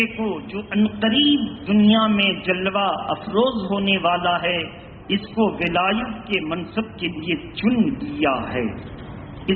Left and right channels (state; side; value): identical; both; correlation 1.00